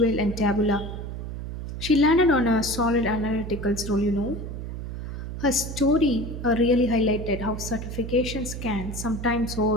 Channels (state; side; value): noise; right; hum, 7 dB below the sound